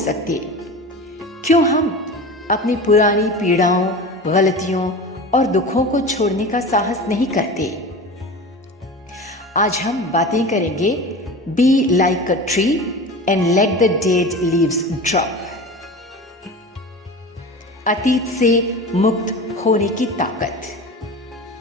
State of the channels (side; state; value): both; normal; correlation 0.32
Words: क्यों हम अपनी पुरानी पीड़ाओं, गलतियों और दुखों को छोड़ने का साहस नहीं करते? आज हम बातें करेंगे be like a tree and let the dead leaves drop. अतीत से मुक्त होने की ताकत।